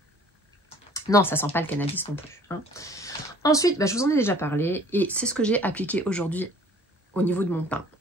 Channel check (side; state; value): both; normal; correlation 0.52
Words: Non, ça sent pas le cannabis non plus. Hein. Ensuite, je vous en ai déjà parlé et c'est ce que j'ai appliqué aujourd'hui au niveau de mon teint.